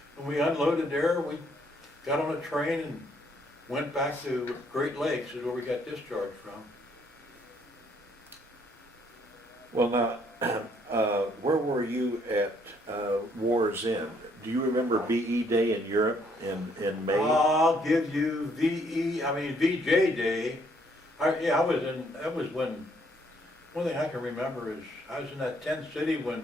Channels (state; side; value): normal; both; correlation 0.67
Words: When we unloaded there, we got on a train and went back to Great Lakes, is where we got discharged from. Well, now, where were you at War's End? Do you remember BE Day in Europe in May? I'll give you VJ Day. That was when, one thing I can remember is, I was in that tent city